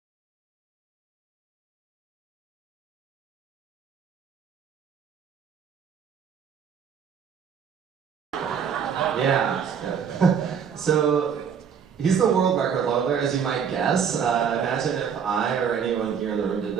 Yeah. So he's the world record holder, as you might guess. Imagine if I or anyone here in the room did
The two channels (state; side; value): quieter; left; 7.3 dB